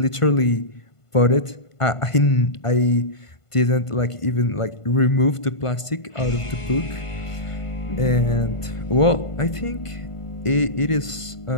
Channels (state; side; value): late; right; 1.5 ms